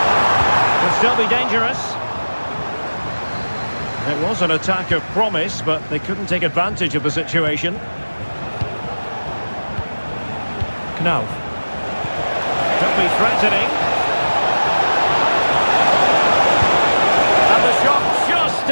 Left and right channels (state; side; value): inverted; both; correlation -1.00